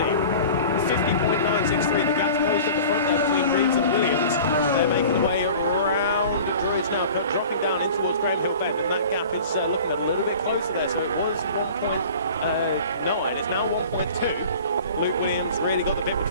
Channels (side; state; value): both; inverted; correlation -0.42